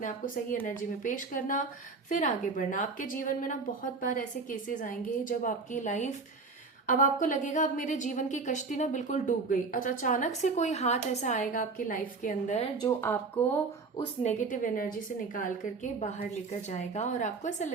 आप को सही एनर्जी में पेश करना, फिर आगे बढ़ना। आपके जीवन में ना बहुत बार ऐसे केसेस आएंगे जब आपकी लाइफ, अब आपको लगेगा अब मेरे जीवन की कश्ती ना बिल्कुल डूब गई। अच्छा, अचानक से कोई हाथ ऐसा आएगा आपकी लाइफ के अंदर जो आपको उस नेगेटिव एनर्जी से निकाल करके बाहर लेकर जाएगा, और आपको ऐसा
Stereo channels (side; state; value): left; quieter; 4.3 dB